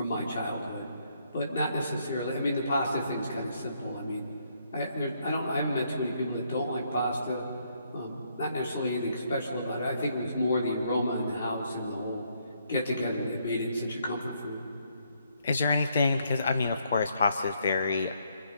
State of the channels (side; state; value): both; inverted; correlation -0.72